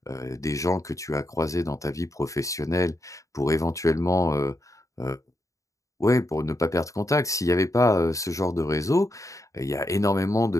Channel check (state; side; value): late; right; 0.16 ms